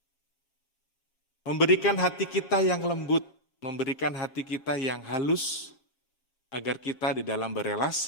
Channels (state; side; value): late; right; 7.1 ms